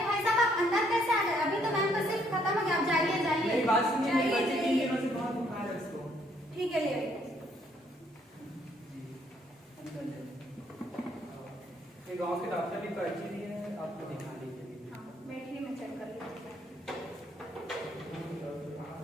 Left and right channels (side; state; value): both; normal; correlation 0.68